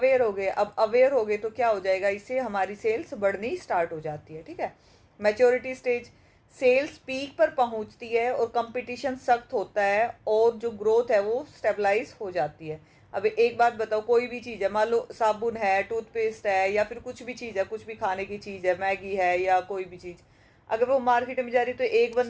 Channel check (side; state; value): both; identical; correlation 1.00